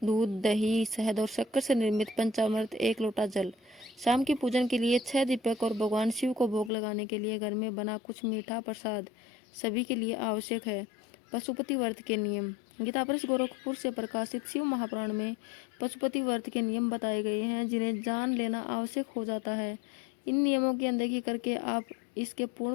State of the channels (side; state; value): right; drops out; at 6.7 s